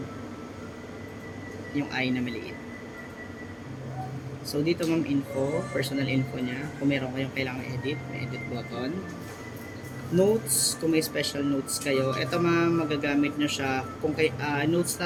Yung I na maliit. So dito ma'am, info, personal info niya. Kung meron kayong kailangan edit, may edit button. Notes, kung may special notes kayo. Ito ma'am, magagamit nyo siya. Kung notes na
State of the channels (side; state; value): both; identical; correlation 1.00